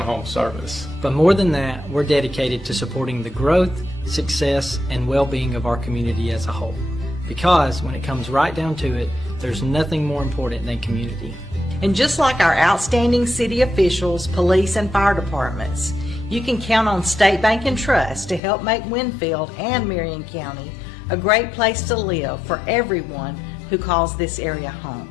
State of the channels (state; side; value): drops out; right; at 18.4 s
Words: service. But more than that, we're dedicated to supporting the growth, success, and well-being of our community as a whole. Because when it comes right down to it, there's nothing more important than community. And just like our outstanding city officials, police, and fire departments, you can count on State Bank and Trust to help make Winfield and Marion County a great place to live for everyone who calls this area